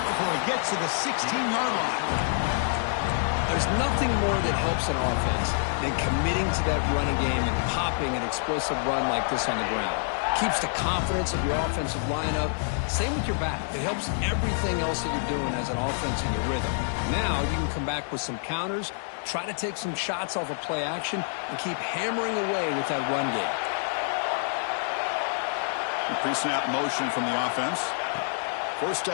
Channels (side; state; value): right; silent; 60 dB below the other